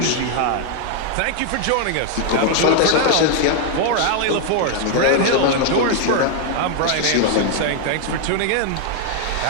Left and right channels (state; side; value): different; both; correlation 0.00